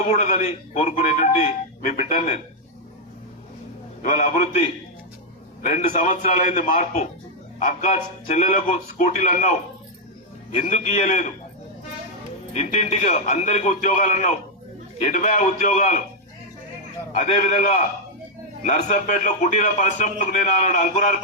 కోరుకునేటువంటి మీ బిడ్డను నేను. ఇవాళ అభివృద్ధి 2 సంవత్సరాలైంది మార్పు. అక్క చెల్లెలకు స్కూటీలు అన్నావు, ఎందుకు ఇయ్యలేదు? ఇంటింటికి అందరికి ఉద్యోగాలు అన్నావు, 80 ఉద్యోగాలు. అదేవిధంగా నర్సంపేటలో కుటీర పరిశ్రమలకు నేను ఆనాడు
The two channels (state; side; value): normal; both; correlation -0.01